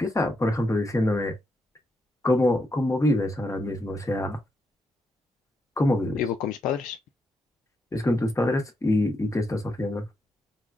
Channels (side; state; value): both; normal; correlation 0.81